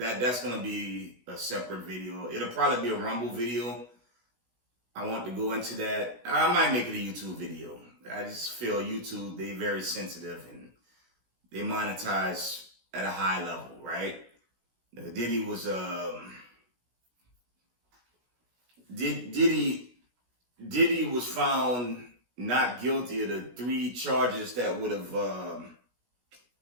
gonna be a separate video. It'll probably be a Rumble video. I want to go into that. I might make it a YouTube video. I just feel YouTube, they're very sensitive and they monetize at a high level, right? Diddy was Diddy was found not guilty of the 3 charges that would have,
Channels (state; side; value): late; left; 16 ms